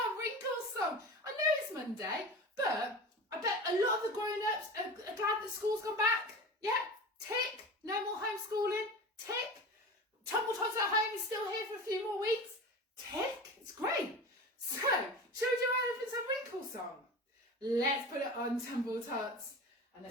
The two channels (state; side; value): normal; both; correlation 0.32